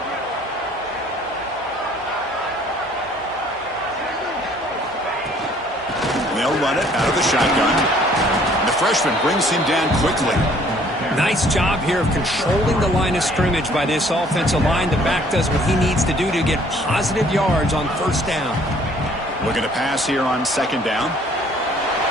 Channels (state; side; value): normal; both; correlation 0.58